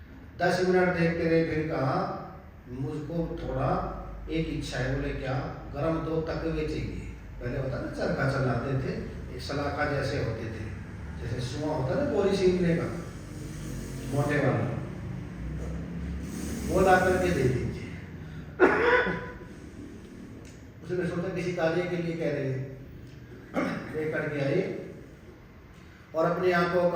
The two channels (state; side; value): identical; both; correlation 1.00